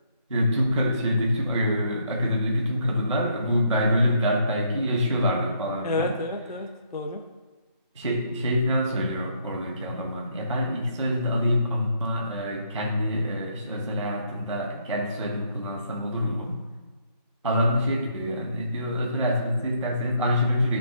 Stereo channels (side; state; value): both; inverted; correlation -0.70